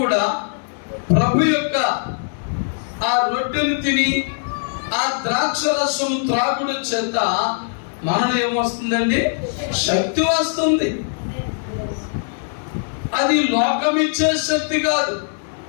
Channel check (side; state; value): right; silent; digital silence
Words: ప్రభు యొక్క ఆ రొట్టెను తిని ఆ ద్రాక్ష రసం త్రాగుడు చేత మనలో ఏమొస్తుందండి? శక్తి వస్తుంది. అది లోకం ఇచ్చే శక్తి కాదు,